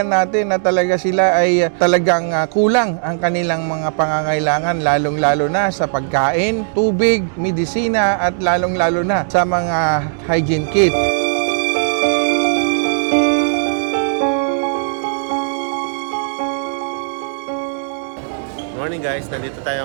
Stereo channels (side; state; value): left; silent; digital silence